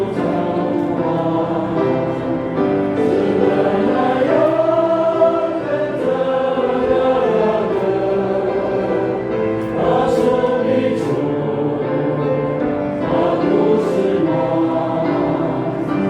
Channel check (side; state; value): both; identical; correlation 1.00